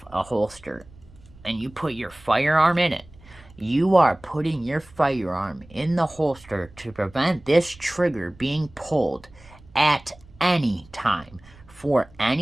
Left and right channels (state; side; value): noise; right; rumble, 24 dB below the sound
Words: a holster and you put your firearm in it, you are putting your firearm in the holster to prevent this trigger being pulled at any time for